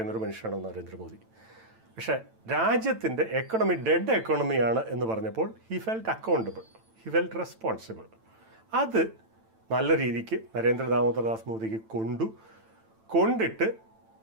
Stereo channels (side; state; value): left; late; 9.0 ms